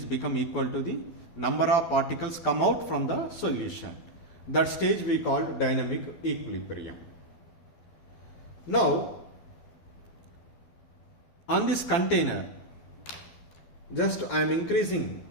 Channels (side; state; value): right; late; 12 ms